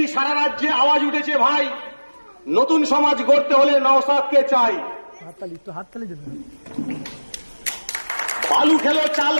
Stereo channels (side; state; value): both; inverted; correlation -1.00